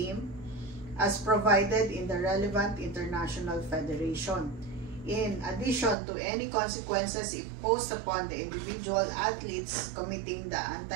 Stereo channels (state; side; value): drops out; left; at 6.0 s